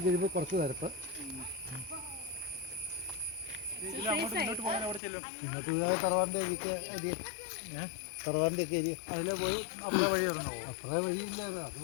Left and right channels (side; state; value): right; drops out; at 5.0 s